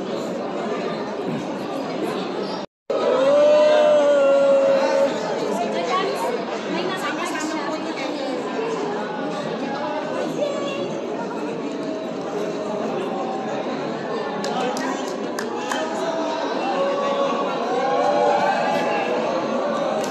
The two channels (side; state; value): both; identical; correlation 1.00